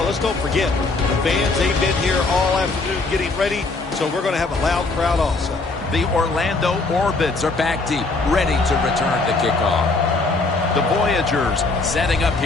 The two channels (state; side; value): quieter; right; 3.6 dB